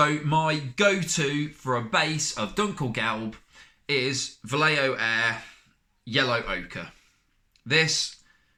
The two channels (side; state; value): both; identical; correlation 1.00